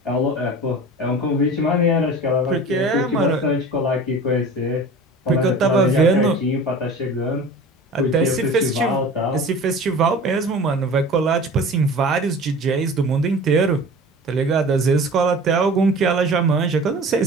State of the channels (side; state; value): both; normal; correlation 0.39